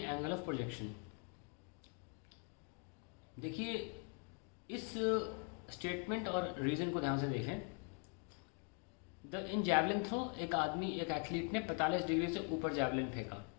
of projection. देखिए इस स्टेटमेंट और रीजन को ध्यान से देखें। इन जैवलिन थ्रो एक एथलीट ने 45 डिग्री से ऊपर जैवलिन फेंका।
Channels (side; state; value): right; quieter; 39.9 dB